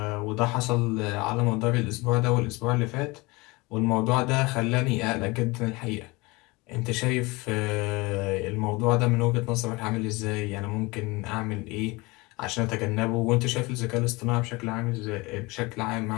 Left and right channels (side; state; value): right; quieter; 24.2 dB